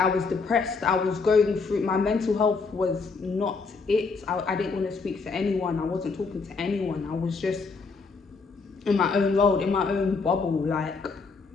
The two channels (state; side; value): quieter; right; 4.5 dB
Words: was depressed. I was going through, my mental health was not it. I didn't want to speak to anyone. I wasn't talking to anyone. I was just in my own world, in my own bubble. Like,